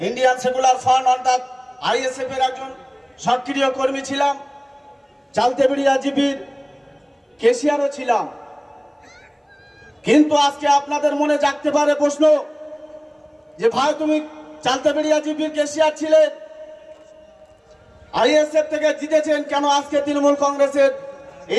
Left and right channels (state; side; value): identical; both; correlation 1.00